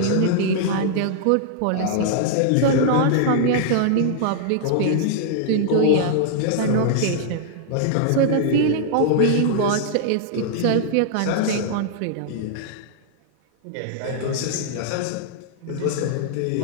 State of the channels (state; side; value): different; both; correlation -0.01